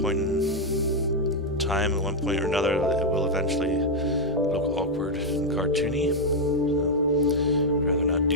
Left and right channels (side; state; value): both; normal; correlation 0.00